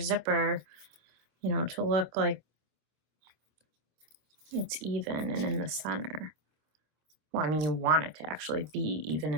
you know, to look like it's even and in the center. Well, I mean, you want it to actually be even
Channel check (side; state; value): left; late; 26 ms